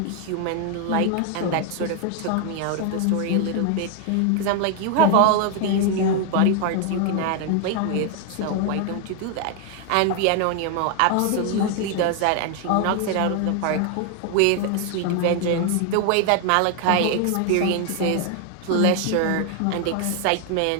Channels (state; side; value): different; both; correlation 0.00